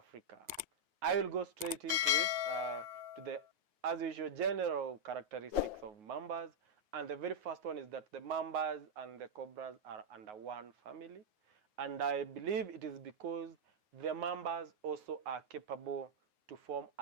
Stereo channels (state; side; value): late; left; 9.4 ms